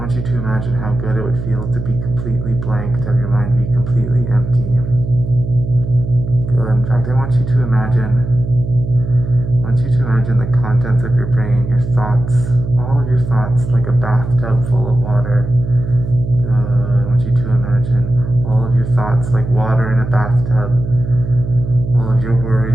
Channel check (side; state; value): right; noise; hum, 6 dB below the sound